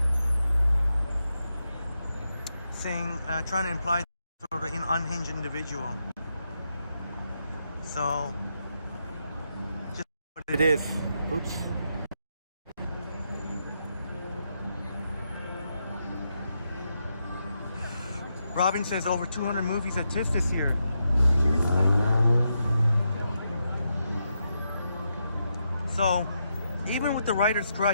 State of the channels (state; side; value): inverted; both; correlation -0.83